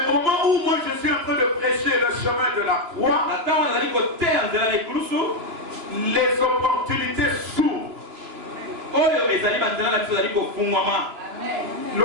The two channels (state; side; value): late; left; 2.9 ms